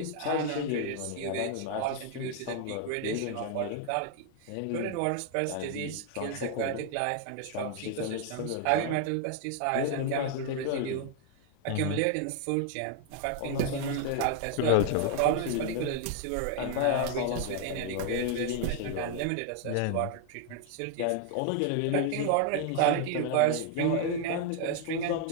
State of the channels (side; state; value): both; different; correlation 0.00